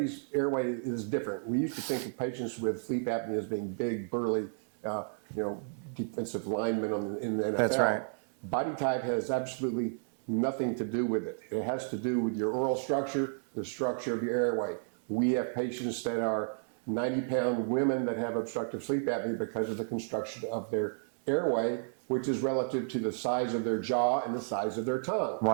airway is different. We used to think of patients with sleep apnea as being big, burly, defensive linemen in the NFL. That's right. Body type has absolutely nothing to do with it. It has to do with your oral structure, the structure of your airway. We have patients that are 90-pound women that have obstructive sleep apnea because of the construction of their airway, which is relative to the size of their jaw and the size of their tongue.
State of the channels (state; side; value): silent; left; digital silence